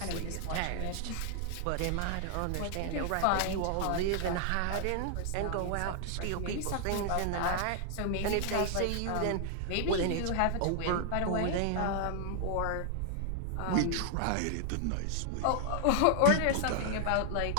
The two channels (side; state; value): both; different; correlation 0.00